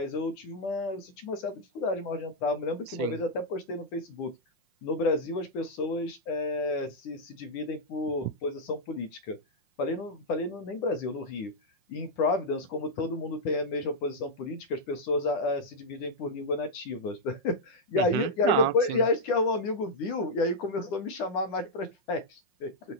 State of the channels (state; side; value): late; right; 5.6 ms